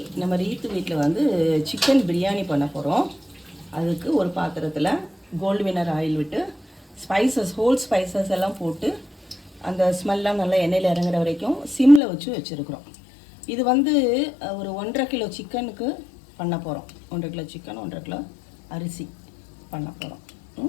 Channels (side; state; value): right; drops out; at 12.0 s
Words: நம்ம ரீத்து வீட்டில் வந்து சிக்கன் பிரியாணி பண்ண போகிறோம். அதுக்கு ஒரு பாத்திரத்தில் கோல்டு வினர் ஆயில் விட்டு ஹோல் ஸ்பைசஸ் எல்லாம் போட்டு அந்த ஸ்மெல்லாம் நல்லா எண்ணெயில் இறங்குற வரைக்கும் சிம்மில் வச்சுருக்குறோம். இது வந்து ஒரு 1.5 கிலோ சிக்கனுக்கு பண்ண போகிறோம். 1.5 கிலோ சிக்கன், 1.5 கிலோ அரிசி பண்ண போகிறோம்.